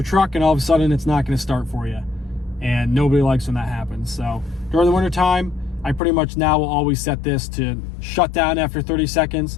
truck and all of a sudden it's not going to start for you. And nobody likes when that happens. So during the winter time, I pretty much now will always set this to shut down after 30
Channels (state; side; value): drops out; right; at 6.0 s